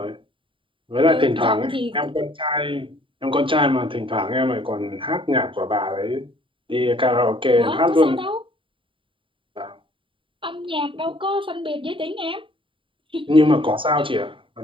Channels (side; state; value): left; late; 0.25 ms